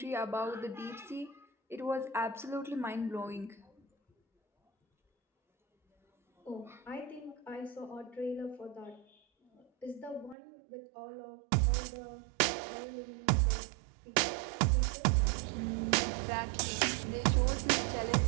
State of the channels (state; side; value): drops out; left; at 10.4 s